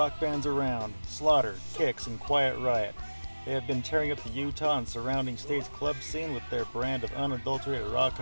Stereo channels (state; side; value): inverted; both; correlation -1.00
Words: bands around, Slaughter, Kix, and Quiet Riot. They have been tearing up the Utah and surrounding states club scene with their brand of unadulterated rock